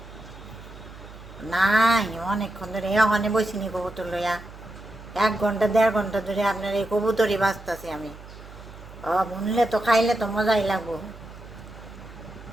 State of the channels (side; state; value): right; noise; hum, 17 dB below the sound